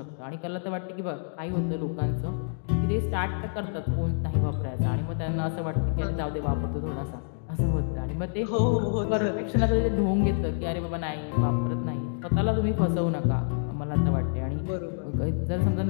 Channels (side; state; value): right; silent; digital silence